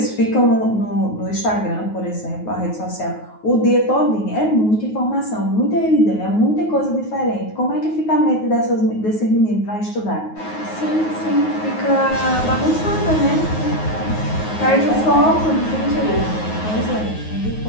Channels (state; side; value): late; right; 9.4 ms